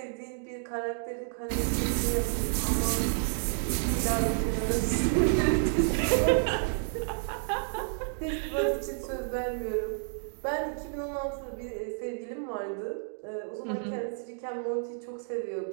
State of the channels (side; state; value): left; silent; digital silence